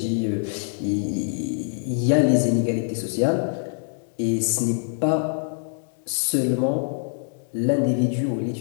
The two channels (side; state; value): right; silent; digital silence